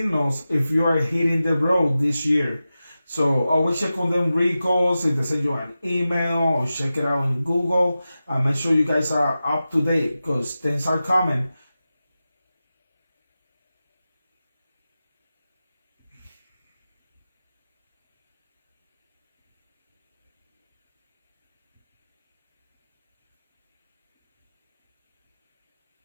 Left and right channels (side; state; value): both; inverted; correlation -0.94